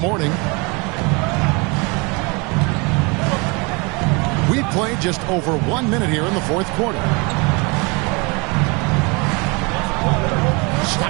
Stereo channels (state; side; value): quieter; left; 29.0 dB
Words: We played just over 1 minute here in the fourth quarter.